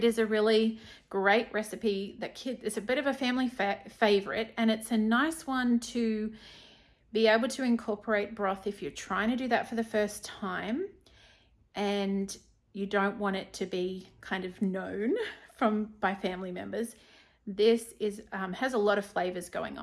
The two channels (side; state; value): both; identical; correlation 1.00